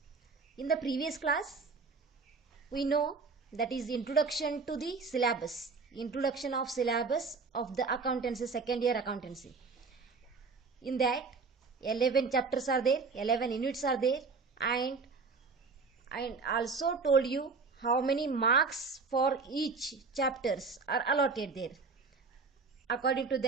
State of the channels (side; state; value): left; quieter; 4.5 dB